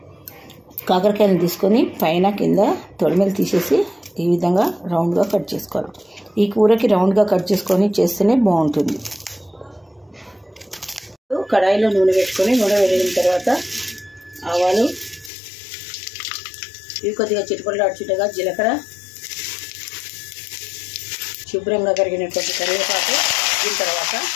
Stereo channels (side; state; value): right; drops out; at 15.3 s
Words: కాకరకాయను తీసుకొని పైన కింద తొడిమెలు తీసేసి ఈ విధంగా రౌండ్గా కట్ చేసుకోవాలి. ఈ కూరకి రౌండ్గా కట్ చేసుకొని చేస్తేనే బాగుంటుంది. కడాయిలో నూనె పెట్టుకొని నూనె వేడిన తర్వాత ఆవాలు, ఇవి కొద్దిగా చిటిపట్లు అడుచుటగా జీలకర్ర, శుభ్రంగా కరిగినటువంటి కరివేపాకు, దీని తర్వాత